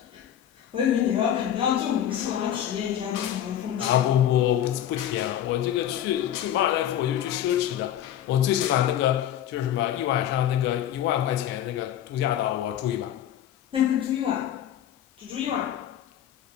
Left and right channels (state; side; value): quieter; right; 10.9 dB